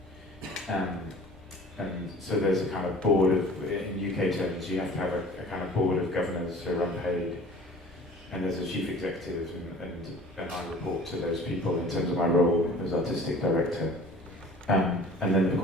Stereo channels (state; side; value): normal; both; correlation 0.46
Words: And so there's a kind of board of, in UK terms, you have to have a kind of board of governors who are unpaid, and there's a chief executive, and I report to those people in terms of my role as artistic director. And then, of